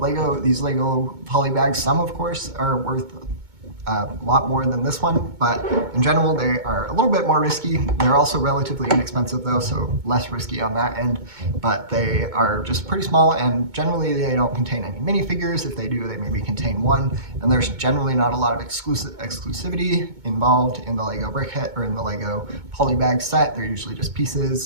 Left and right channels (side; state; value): left; late; 2.2 ms